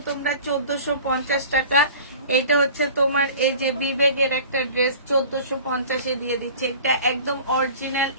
তোমরা 1450 টাকা। এটা হচ্ছে তোমার এই যে বিবেকের একটা ড্রেস 1450-এ দিয়ে দিচ্ছে। এটা একদম অরিজিনাল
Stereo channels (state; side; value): inverted; both; correlation -0.43